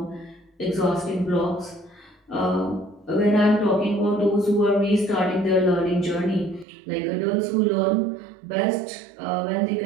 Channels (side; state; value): left; drops out; at 6.7 s